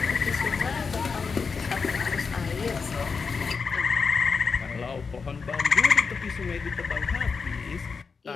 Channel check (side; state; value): right; quieter; 5.2 dB